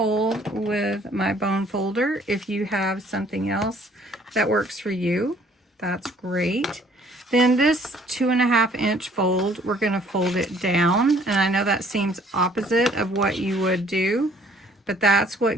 with my bone folder. If you have something else that works for you, that's great. Then this 2.5 inch fold, we're gonna fold it down, and I know that seems opposite of what you would do, but that's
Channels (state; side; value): normal; both; correlation 0.59